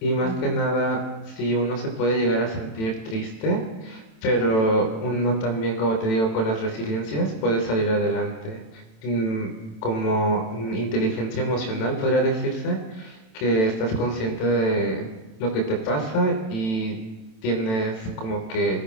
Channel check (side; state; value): right; late; 27 ms